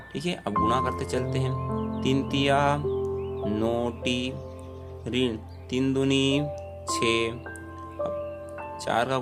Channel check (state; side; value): identical; both; correlation 1.00